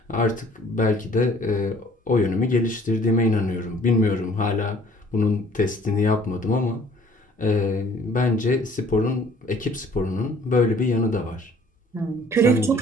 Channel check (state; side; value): normal; both; correlation 0.56